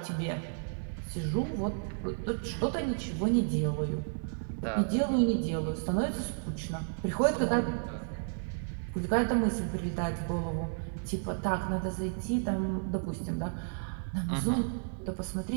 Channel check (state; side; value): silent; left; digital silence